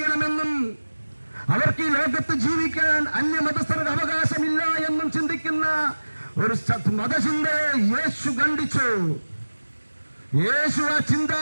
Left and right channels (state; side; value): inverted; both; correlation -1.00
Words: അവർക്ക് ഈ ലോകത്ത് ജീവിക്കാൻ അന്യമതസ്ഥരുടെ അവകാശമില്ല എന്നും ചിന്തിക്കുന്ന ഒരു മതചിന്തയെ യേശു ഖണ്ഡിച്ചു. യേശു ആ